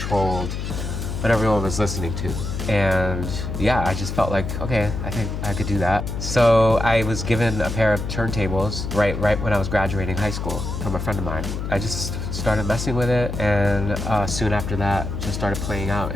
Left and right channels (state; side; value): noise; left; hum, 4 dB below the sound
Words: what everyone was listening to. And yeah, I just felt like, okay, I think I could do that. So I was given a pair of turntables right when I was graduating high school from a friend of mine. I just started messing with it, and soon after that, just started playing out